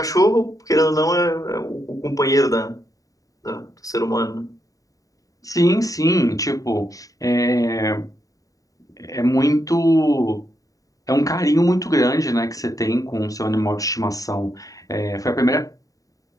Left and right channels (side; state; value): right; late; 0.17 ms